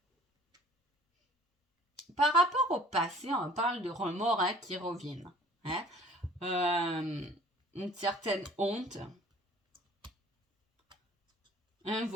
Par rapport au passé, on parle de remords hein, qui reviennent. Hein. Une certaine honte. Un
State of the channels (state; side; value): normal; both; correlation 0.52